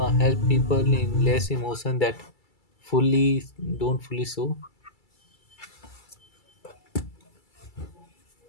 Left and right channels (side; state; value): right; late; 2.3 ms